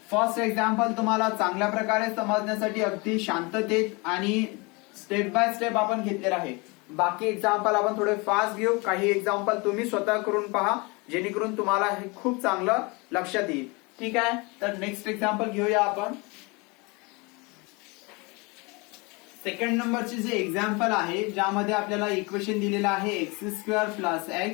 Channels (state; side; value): quieter; right; 27.6 dB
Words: first example तुम्हाला चांगल्या प्रकारे समजण्यासाठी अगदी शांततेत आणि स्टेप बाय स्टेप आपण घेतलेला आहे. बाकी एक्झाम्पल आपण थोडे फास्ट घेऊ. काही एक्झाम्पल तुम्ही स्वतः करून पहा, जेणेकरून तुम्हाला हे खूप चांगलं लक्षात येईल. ठीक आहे, तर नेक्स्ट एक्झाम्पल घेऊया आपण. सेकंड नंबरचे जे एक्झाम्पल आहे ज्यामध्ये आपल्याला इक्वेशन दिलेलं आहे x² +